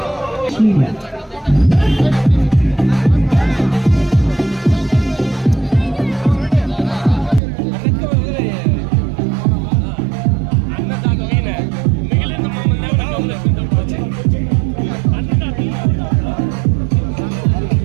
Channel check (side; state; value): left; drops out; at 7.4 s